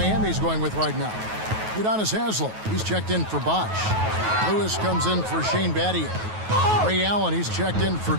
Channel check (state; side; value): late; left; 9.3 ms